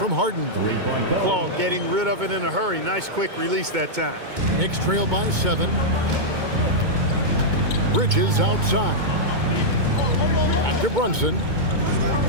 Harden. Claw getting rid of it in a hurry. Nice quick release that time. Knicks trail by 7. Bridges outside. Back to Brunson.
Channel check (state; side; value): late; left; 2.2 ms